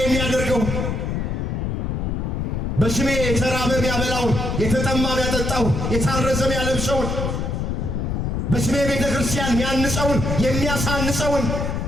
በስሜ የተራበ የሚያበላውን፣ የተጠማ የሚያጠጣው፣ የታረዘ የሚያለብሰውን፣ በስሜ ቤተ ክርስቲያን የሚያንጸውን የሚያሳንጸውን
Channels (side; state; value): left; noise; rumble, 1 dB below the sound